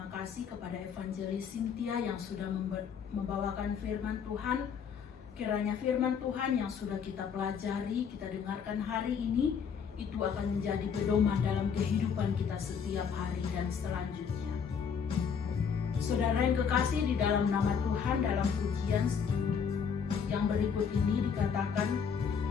kasih kepada Evangelis Cynthia yang sudah membawakan firman Tuhan. Kiranya firman Tuhan yang sudah kita pelajari, kita dengarkan hari ini, itu akan menjadi pedoman dalam kehidupan kita setiap hari dan selanjutnya. Saudara yang kekasih, di dalam nama Tuhan, dalam pujian yang berikut ini dikatakan,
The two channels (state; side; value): quieter; right; 6.8 dB